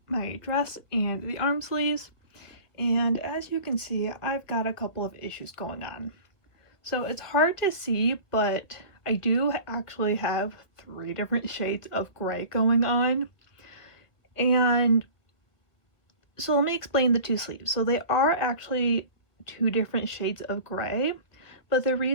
my dress and the arm sleeves, and as you can see, I've got a couple of issues going on. So it's hard to see, but I do actually have 3 different shades of gray going on. And so let me explain the 2 sleeves. So they are actually 2 different shades of gray, but the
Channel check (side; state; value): right; late; 1.8 ms